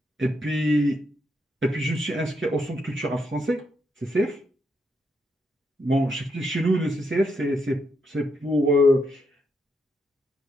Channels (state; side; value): normal; both; correlation 0.79